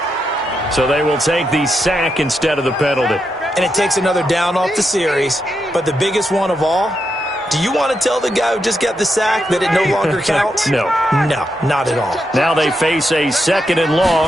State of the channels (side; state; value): both; normal; correlation 0.84